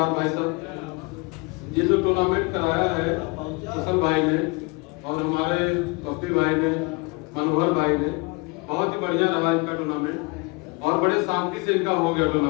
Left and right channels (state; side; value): quieter; right; 28.1 dB